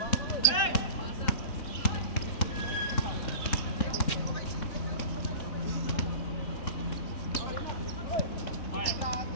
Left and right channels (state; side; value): late; right; 3.7 ms